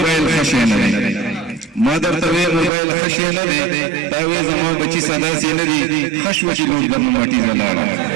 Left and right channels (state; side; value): drops out; left; at 2.7 s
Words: ښه شی نه دی ما درته وې موبایل ښه شی نه دی تا وې زما بچي سداسې نه دي ښه شوه چې لوټ درنه مټیزه لاړه